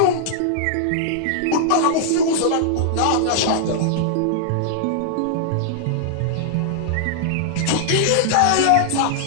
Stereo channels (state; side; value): different; both; correlation -0.01